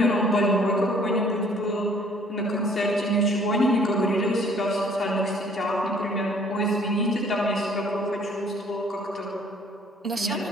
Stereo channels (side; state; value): both; normal; correlation 0.58